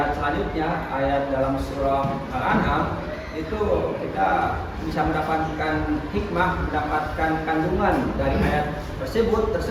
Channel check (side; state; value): both; identical; correlation 1.00